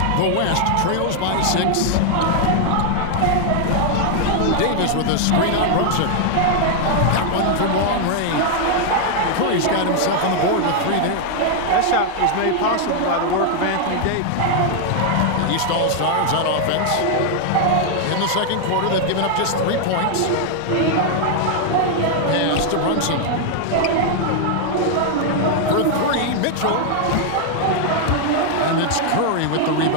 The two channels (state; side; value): different; both; correlation 0.00